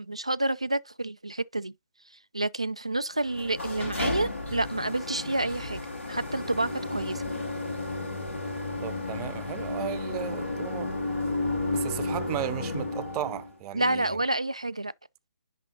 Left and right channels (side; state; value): both; inverted; correlation -0.72